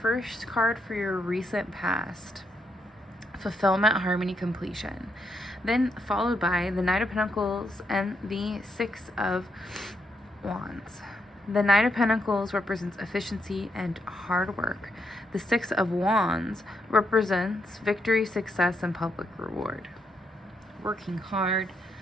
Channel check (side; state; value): both; normal; correlation 0.79